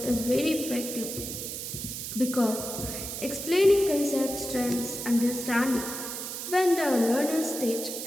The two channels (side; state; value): right; noise; hiss, 6 dB below the sound